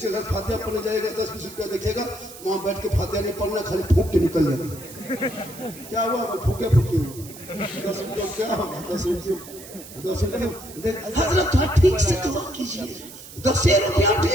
घर फातिहा पढ़ने जाएगा 10-20 रुपया देखेगा, वहां बैठ के फातिहा नहीं पढ़ना, खाली फूक के निकल जाएगा। क्या हुआ? फूके 10 रुपया क्या होगा? 10 रुपये हजरत थोड़ा ठीक से दुआ कीजिए। 10 रुपया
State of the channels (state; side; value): noise; right; hiss, 16 dB below the sound